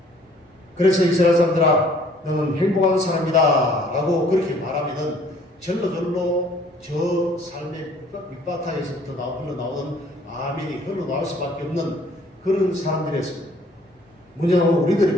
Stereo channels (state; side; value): normal; both; correlation 0.58